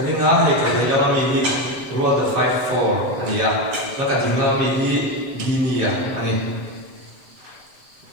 ringa he ka lama mi hi rual the 54 ania la ka dinga mi hi ginia ani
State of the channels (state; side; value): late; left; 7.4 ms